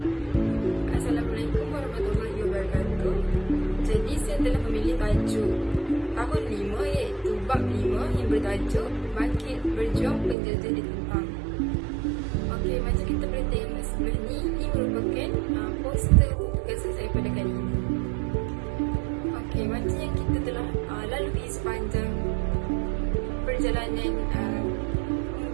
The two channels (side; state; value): left; drops out; at 10.4 s